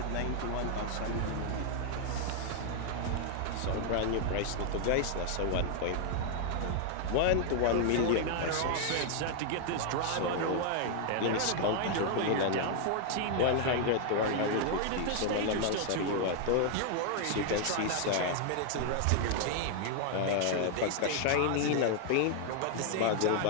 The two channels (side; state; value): both; different; correlation 0.00